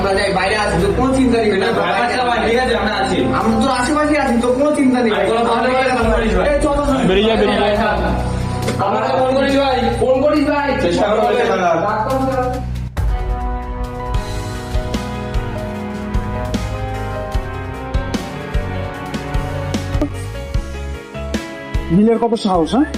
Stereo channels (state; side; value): identical; both; correlation 1.00